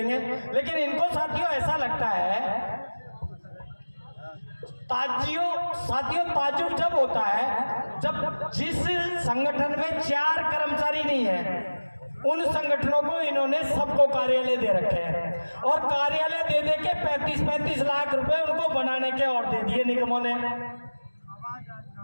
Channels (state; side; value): inverted; both; correlation -1.00